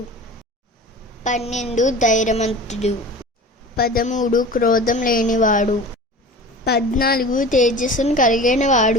12 ధైర్యవంతుడు, 13 క్రోధం లేనివాడు, 14 తేజస్సును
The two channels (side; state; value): both; normal; correlation 0.37